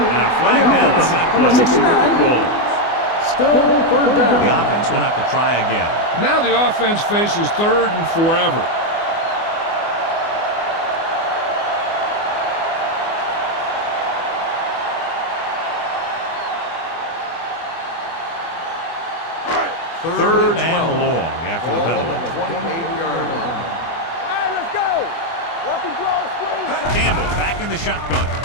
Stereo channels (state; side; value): late; right; 24 ms